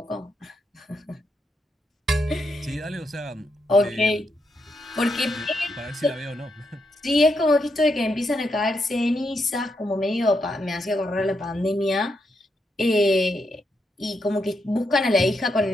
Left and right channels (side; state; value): both; normal; correlation 0.81